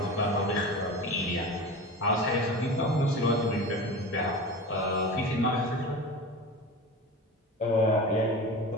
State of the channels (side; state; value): both; normal; correlation 0.31